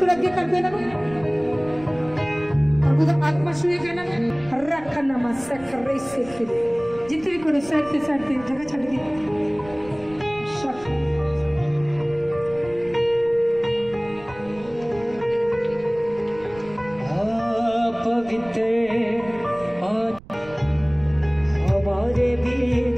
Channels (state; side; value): noise; right; rumble, 20 dB below the sound